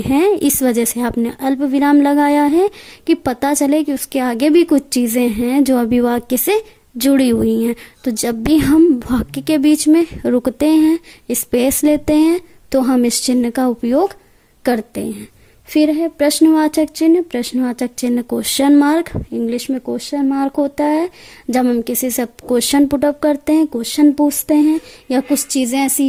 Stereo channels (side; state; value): both; identical; correlation 1.00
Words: हैं। इस वजह से आपने अल्प विराम लगाया है कि पता चले कि उसके आगे भी कुछ चीज़ें हैं जो अभी वाक्य से जुड़ी हुई हैं। तो जब भी हम वाक्य के बीच में रुकते हैं, स्पेस लेते हैं, तो हम इस चिन्ह का उपयोग करते हैं। फिर है प्रश्नवाचक चिन्ह। प्रश्नवाचक चिन्ह क्वेश्चन मार्क, इंग्लिश में क्वेश्चन मार्क होता है। जब हम किसी से क्वेश्चन पुटअप करते हैं, क्वेश्चन पूछते हैं, या कुछ चीज़ें ऐसी